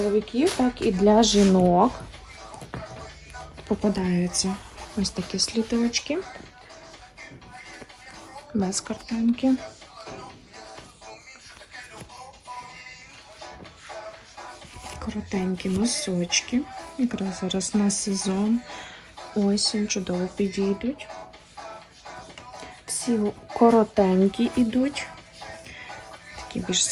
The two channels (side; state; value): both; identical; correlation 1.00